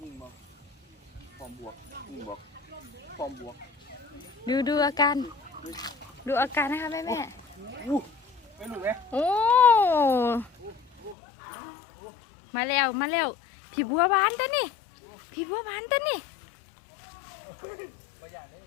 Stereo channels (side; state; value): right; drops out; at 11.2 s